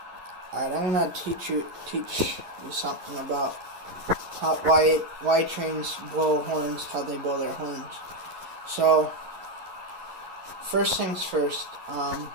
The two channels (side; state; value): left; late; 11 ms